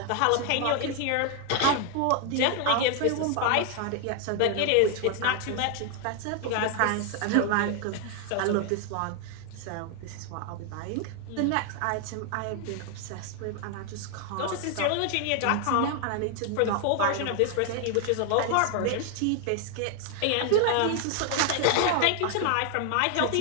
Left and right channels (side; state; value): both; different; correlation 0.00